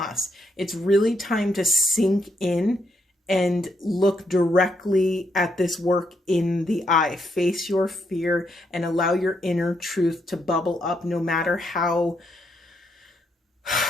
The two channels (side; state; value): both; normal; correlation 0.77